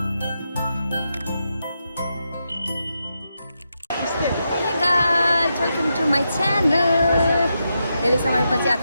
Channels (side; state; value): both; inverted; correlation -0.85